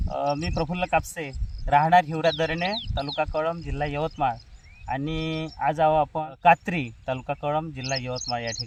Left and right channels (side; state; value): both; identical; correlation 1.00